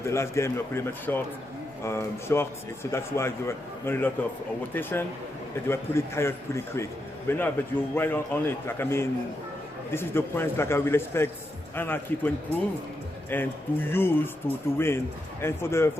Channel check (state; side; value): normal; both; correlation 0.84